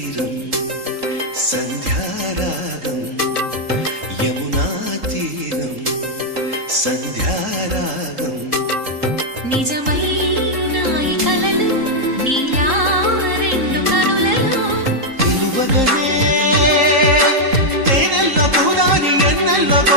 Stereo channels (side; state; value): left; late; 3.8 ms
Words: సంధ్యారాగం యమునా తీరం సంధ్యారాగం నిజమైన ఈ కలలు నీలా రెండు కనులలో నిలువగనే తేనెల్లో గోదారి ఎన్నెల్లో